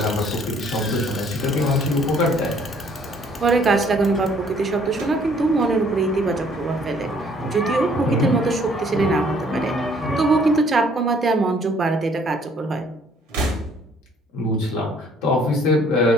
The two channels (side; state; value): both; normal; correlation 0.61